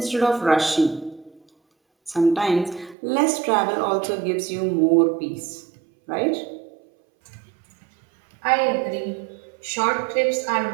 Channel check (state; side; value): drops out; left; at 3.0 s